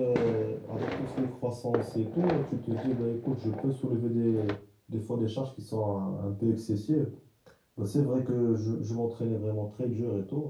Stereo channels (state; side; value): identical; both; correlation 1.00